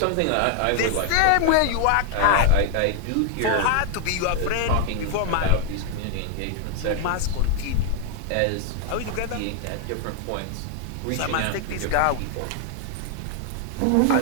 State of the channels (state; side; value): different; both; correlation 0.00